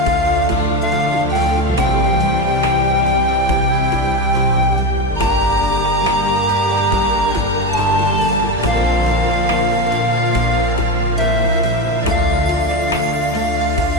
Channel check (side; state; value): both; normal; correlation 0.19